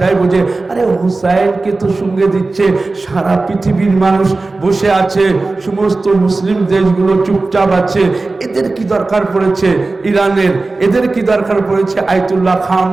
বুঝে, আরে হুসাইনকে তো সঙ্গে দিচ্ছে, সারা পৃথিবীর মানুষ বসে আছে, সমস্ত মুসলিম দেশগুলো চুপচাপ আছে, এদের কি দরকার পড়েছে ইরানের, এদের কি দরকার পড়েছে আয়াতুল্লাহ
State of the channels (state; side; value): quieter; left; 3.5 dB